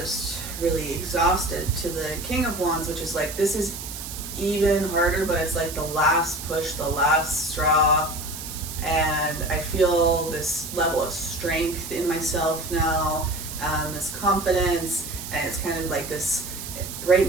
really exhausted, to the King of Wands, which is like, this is even harder, but it's like the last push, the last straw. And I feel this level of strength in myself now, this confidence, and it's kind of like this, right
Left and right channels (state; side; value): noise; right; hiss, 9 dB below the sound